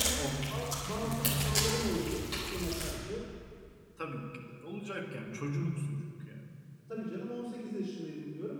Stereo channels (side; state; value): both; identical; correlation 1.00